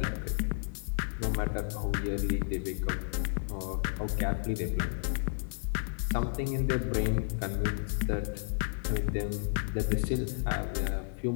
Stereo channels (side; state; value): right; silent; 56 dB below the other